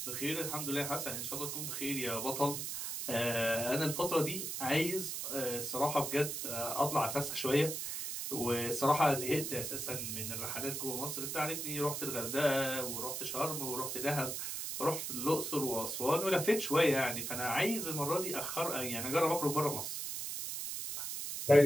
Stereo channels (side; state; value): right; noise; hiss, 4 dB below the sound